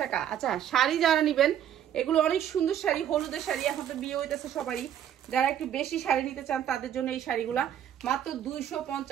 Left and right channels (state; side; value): quieter; left; 10.1 dB